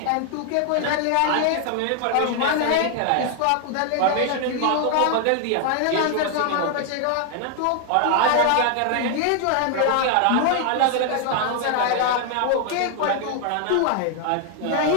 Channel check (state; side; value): different; both; correlation 0.00